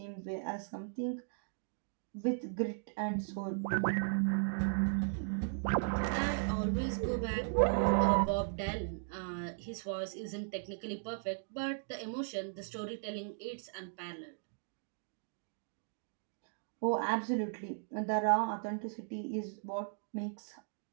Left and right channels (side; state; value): left; silent; digital silence